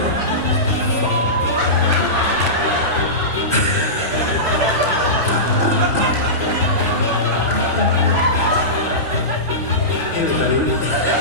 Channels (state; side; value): normal; both; correlation -0.18